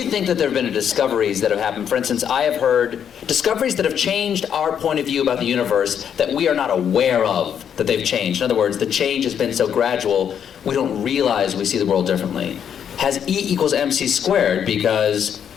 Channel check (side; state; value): right; quieter; 8.4 dB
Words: think that there have been discoveries that have happened? For instance, I have heard discoveries that have changed our point of view about the universe that we are not aware of that they've changed. In other words, the change has been so gradual, we don't realize we see the world differently. Has E equals MC squared, because